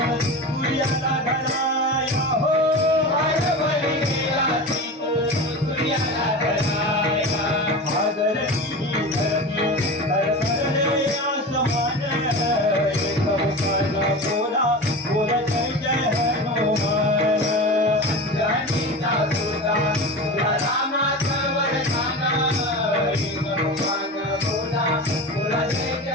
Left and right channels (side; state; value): both; normal; correlation 0.29